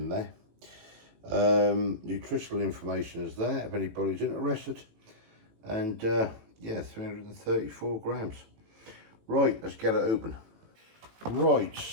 there. Nutritional information is there if anybody's interested. And yeah, 334 grams. Right, let's get it open. Right,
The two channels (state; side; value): late; left; 18 ms